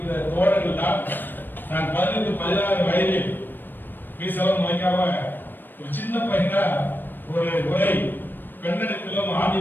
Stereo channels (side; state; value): right; late; 0.093 ms